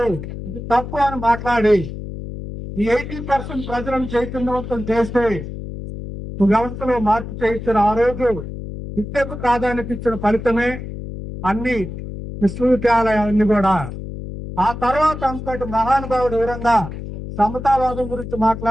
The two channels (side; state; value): left; noise; hum, 9 dB below the sound